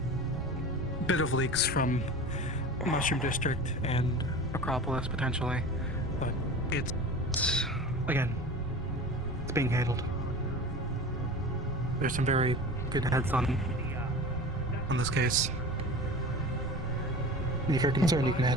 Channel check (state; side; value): normal; both; correlation 0.36